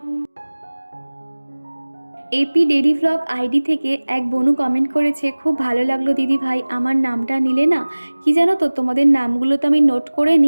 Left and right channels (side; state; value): both; inverted; correlation -1.00